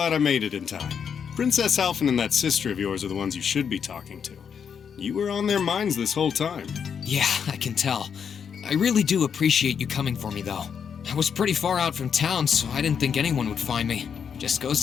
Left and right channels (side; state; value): right; quieter; 7.2 dB